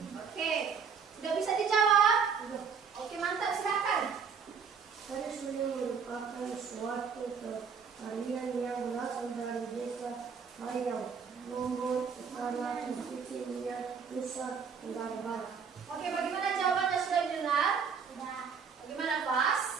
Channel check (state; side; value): quieter; left; 6.2 dB